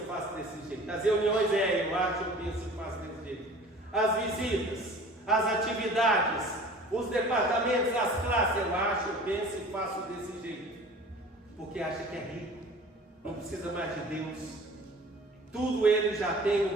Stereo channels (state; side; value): normal; both; correlation 0.44